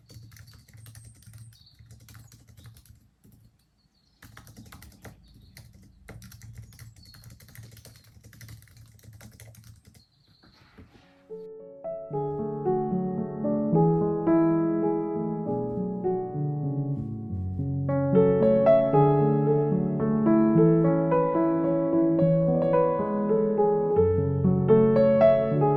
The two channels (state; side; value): identical; both; correlation 1.00